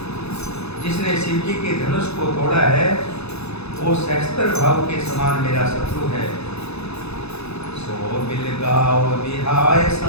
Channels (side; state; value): right; late; 0.79 ms